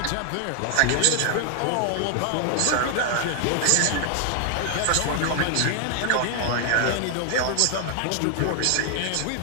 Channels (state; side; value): different; both; correlation 0.00